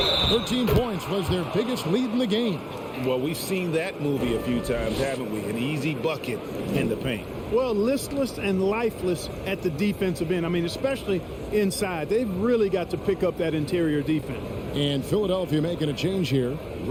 13 points was their biggest lead in the game. Well, we've seen that movie a few times, haven't we? An easy bucket in the paint. Well, listless and lifeless at the defensive end. I mean, especially inside. They've really got to pick up that interior defense. And Philadelphia making a change here.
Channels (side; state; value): both; identical; correlation 1.00